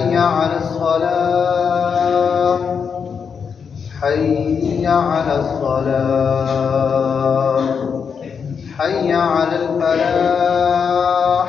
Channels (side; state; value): right; quieter; 6.4 dB